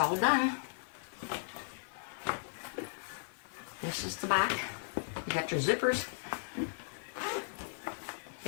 done. This is the back. You got your zippers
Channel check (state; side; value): silent; right; 54 dB below the other